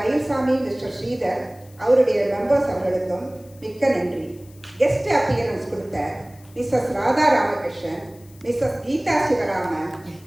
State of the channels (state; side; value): noise; left; hiss, 27 dB below the sound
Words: மிஸ்டர் ஸ்ரீதர் அவருடைய மெம்பர்ஸ் அவர்களுக்கும் மிக்க நன்றி. கெஸ்ட் அப்பியரன்ஸ் கொடுத்த Mrs Radha Ramakrishnan, Mrs Geetha Sivaraman,